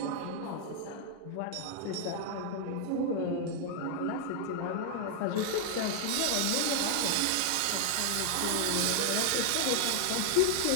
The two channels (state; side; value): different; both; correlation 0.00